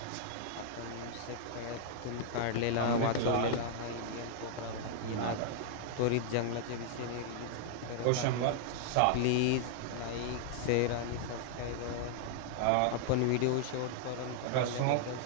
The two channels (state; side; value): different; both; correlation 0.00